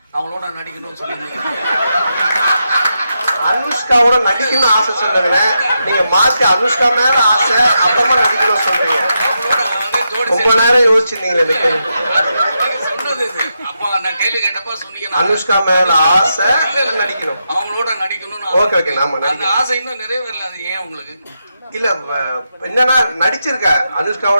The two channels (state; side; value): inverted; both; correlation -0.85